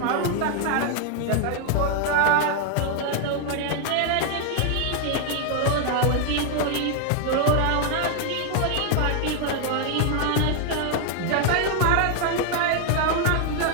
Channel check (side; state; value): both; different; correlation 0.00